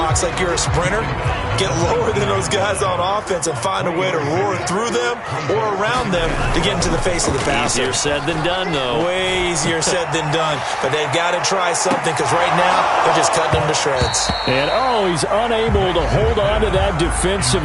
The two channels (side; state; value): both; identical; correlation 1.00